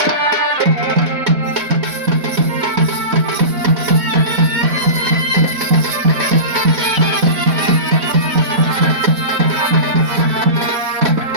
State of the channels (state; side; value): late; left; 4.1 ms